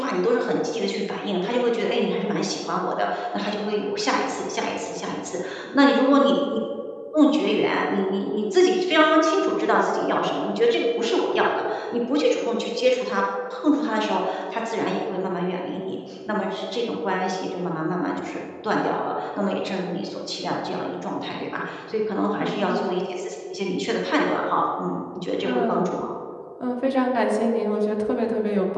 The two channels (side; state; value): both; identical; correlation 1.00